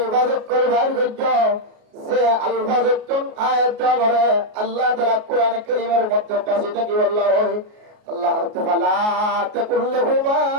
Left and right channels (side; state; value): left; late; 33 ms